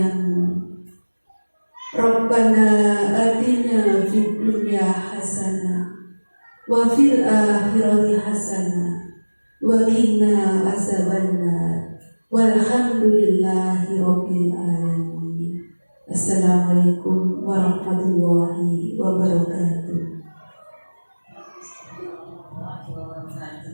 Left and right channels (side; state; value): both; inverted; correlation -1.00